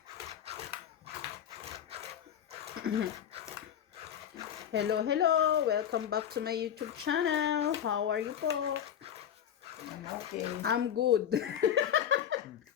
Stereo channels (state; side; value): quieter; right; 9.4 dB